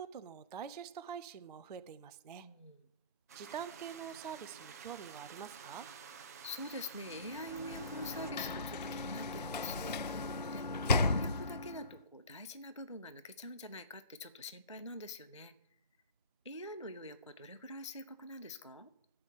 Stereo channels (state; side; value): inverted; both; correlation -0.43